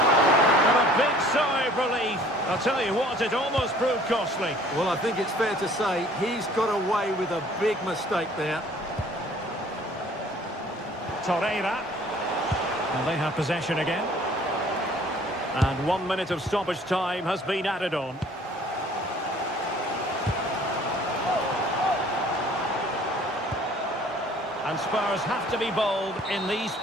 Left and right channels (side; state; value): both; normal; correlation 0.54